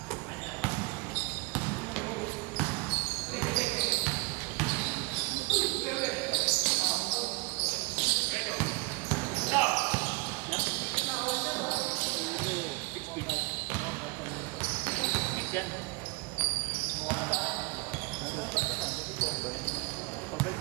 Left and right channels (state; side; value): quieter; left; 26.9 dB